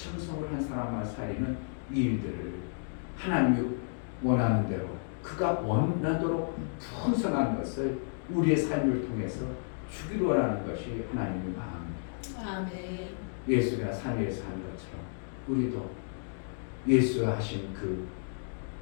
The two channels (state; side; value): silent; right; digital silence